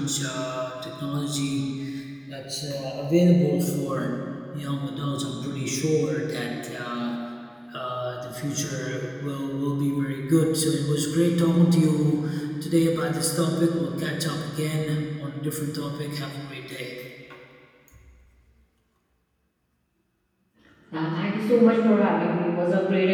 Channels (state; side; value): identical; both; correlation 1.00